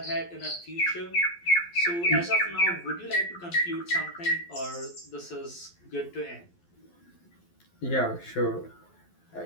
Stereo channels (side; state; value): right; late; 12 ms